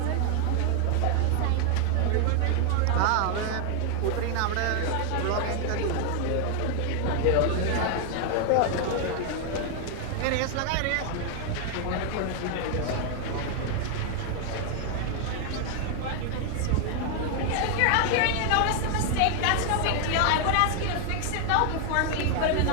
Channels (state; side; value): different; both; correlation 0.00